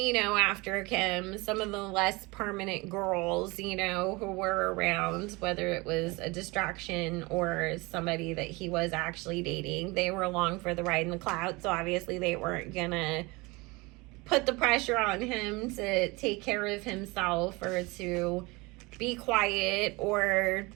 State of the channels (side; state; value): left; quieter; 24.6 dB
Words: you know, after Kim, some of the less permanent girls, you know, who were around, whether it was a distraction or somebody that he was actually dating, they were along for the ride in the cloud. So obviously they weren't gonna put the pressure on him to take care of himself or to be quiet or